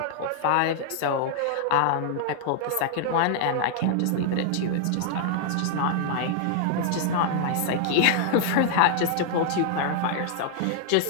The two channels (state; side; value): different; both; correlation 0.00